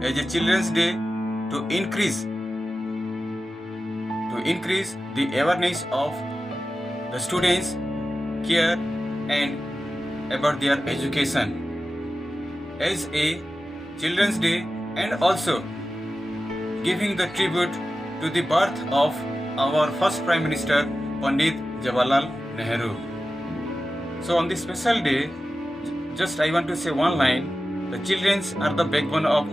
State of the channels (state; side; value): normal; both; correlation 0.94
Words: as a Children's Day to increase the awareness of the students' care and about their education. As a Children's Day and also giving the tribute to the birth of our first Prime Minister, Pandit Jawaharlal Nehru. So on this special day, just I want to say one line, the children are the backbone of